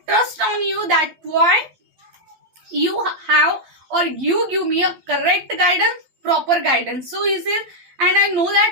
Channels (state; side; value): late; left; 12 ms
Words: trust on you. That's why you have, or you give me a correct guidance, proper guidance. So he says, and I know